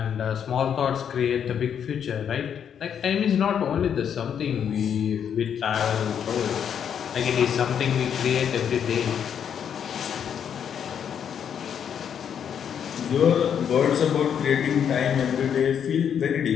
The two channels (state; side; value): quieter; right; 8.3 dB